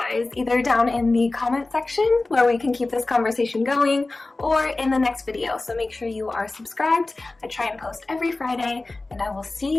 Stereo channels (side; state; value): right; quieter; 3.2 dB